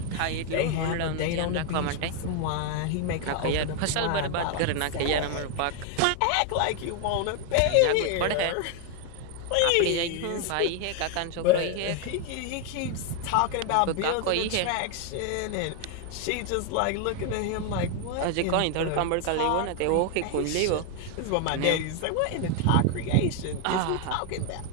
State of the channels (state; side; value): different; both; correlation 0.01